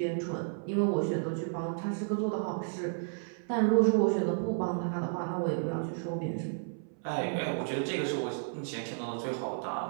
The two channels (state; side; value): silent; left; 56 dB below the other